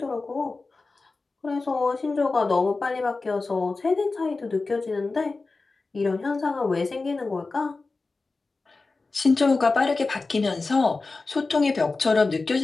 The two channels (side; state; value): right; quieter; 3.7 dB